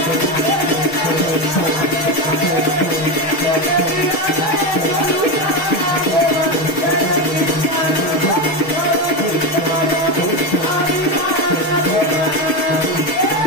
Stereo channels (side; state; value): right; late; 6.4 ms